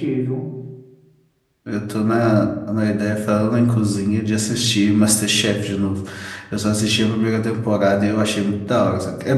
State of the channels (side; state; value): both; identical; correlation 1.00